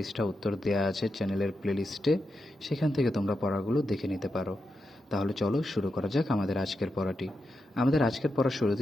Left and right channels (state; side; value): normal; both; correlation 0.87